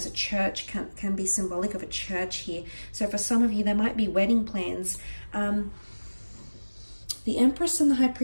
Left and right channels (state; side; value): inverted; both; correlation -1.00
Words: a church, can be symbolic of a church here. So for some of you, there might be wedding plans. The Empress and the High